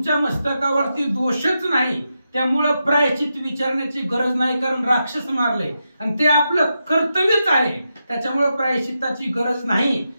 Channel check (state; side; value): inverted; both; correlation -0.87